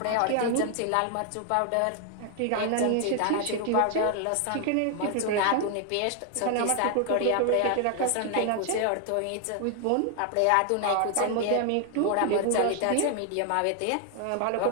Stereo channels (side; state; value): both; different; correlation 0.00